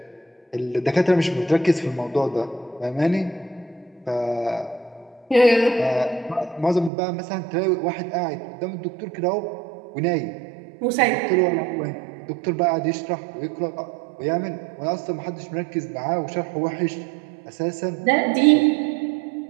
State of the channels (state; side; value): drops out; left; at 6.9 s